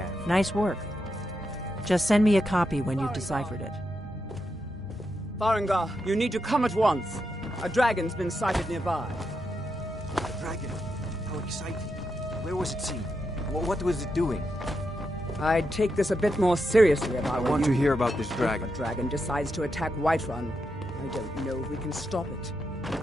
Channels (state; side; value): normal; both; correlation 0.85